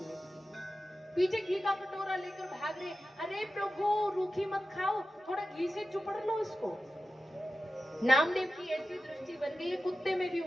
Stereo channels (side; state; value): both; normal; correlation 0.94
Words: की। पीछे घी का कटोरा लेकर भाग रहे, अरे प्रभु रूखी मत खाओ, थोड़ा घी से चुपड़ लो इसको। नामदेव की ऐसी दृष्टि बन गई, कुत्ते में भी